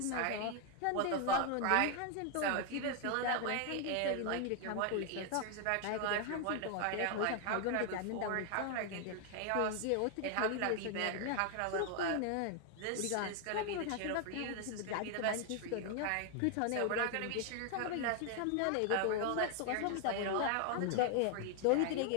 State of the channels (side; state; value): both; different; correlation 0.00